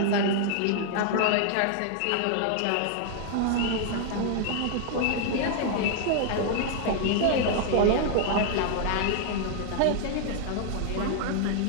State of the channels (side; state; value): both; different; correlation 0.00